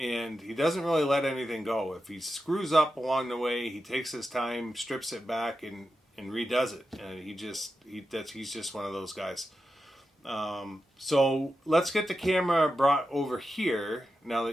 he doesn't really let anything go. If he screws up along the way, he takes his time, strips it back, and redoes it. And he's just one of those guys. So let's get the camera brought over here now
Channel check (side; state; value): both; normal; correlation 0.90